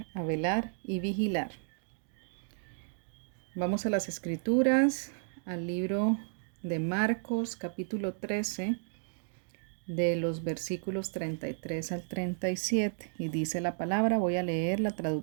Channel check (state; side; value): silent; left; digital silence